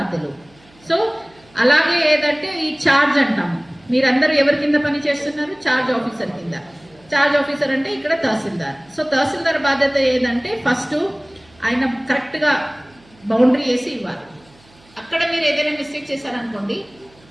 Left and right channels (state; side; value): noise; right; hum, 29 dB below the sound